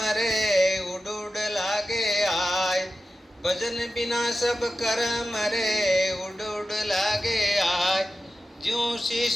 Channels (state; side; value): normal; both; correlation 0.93